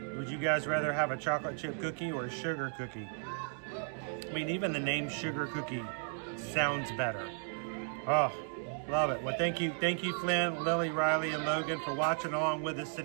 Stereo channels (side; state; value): left; silent; 55 dB below the other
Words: Would you guys rather have a chocolate chip cookie or a sugar cookie? I mean, even the name sugar cookie sounds better. Oh, love it. Well, thank you, Flynn, Lily, Riley, and Logan for watching along with us